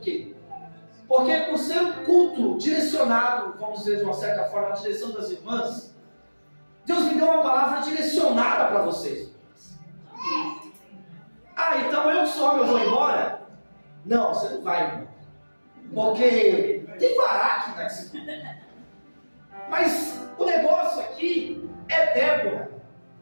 Porque por ser um culto direcionado, vamos dizer de uma certa forma, a direção das irmãs, Deus me deu uma palavra direcionada para vocês. Então eu só eu vou embora? Não, você não vai embora. Porque tem Baraque nesse culto. Mas o negócio aqui é Débora.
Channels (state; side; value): inverted; both; correlation -1.00